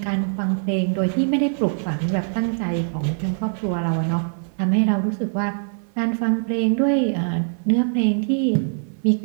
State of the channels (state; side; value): silent; left; 64 dB below the other